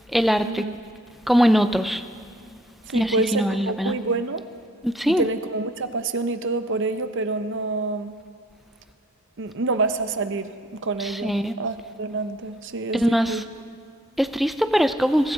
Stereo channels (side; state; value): both; normal; correlation 0.61